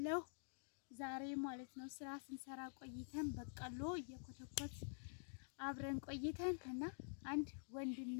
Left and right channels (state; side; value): silent; right; digital silence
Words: ዛሬ ማለት ነው። ስራ ስንሰራ ቆይተን በቀሎ እየኮተኮት አብረን ቆይተን እና አንድ ወንድም